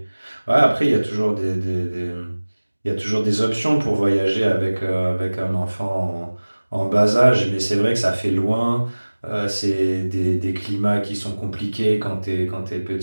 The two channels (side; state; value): both; inverted; correlation -1.00